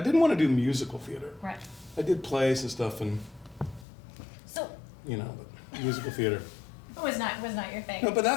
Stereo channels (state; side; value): drops out; right; at 3.9 s